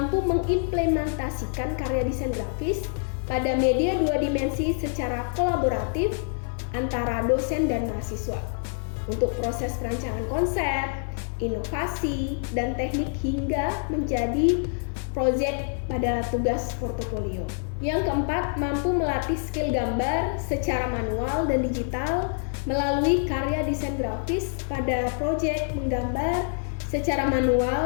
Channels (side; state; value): right; silent; 55 dB below the other